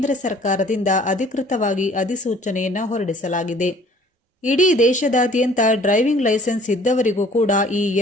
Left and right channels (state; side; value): normal; both; correlation 0.54